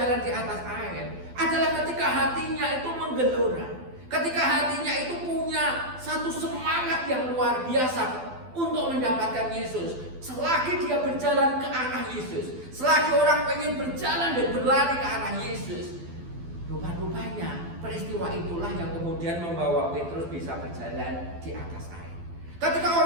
di atas air? Adalah ketika hatinya itu menggelora. Ketika hatinya itu punya satu semangat yang luar biasa untuk mendapatkan Yesus. Selagi dia berjalan ke arah Yesus, selagi orang pengen berjalan dan berlari ke arah Yesus, rupa-rupanya peristiwa itulah yang kemudian membawa Petrus bisa berjalan di atas air. Ketika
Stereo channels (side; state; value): left; late; 12 ms